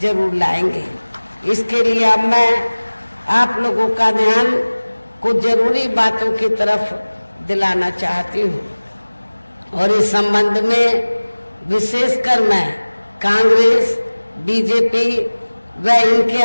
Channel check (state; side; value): inverted; both; correlation -1.00